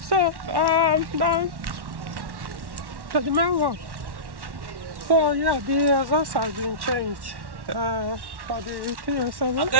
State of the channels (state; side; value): late; left; 1.1 ms